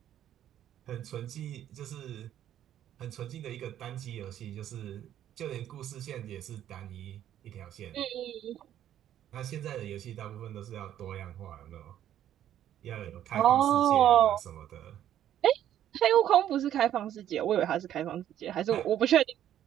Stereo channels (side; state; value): left; quieter; 11.2 dB